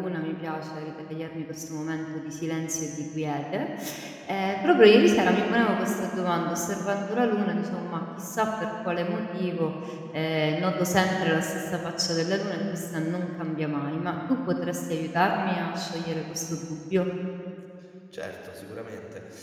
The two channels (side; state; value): both; identical; correlation 1.00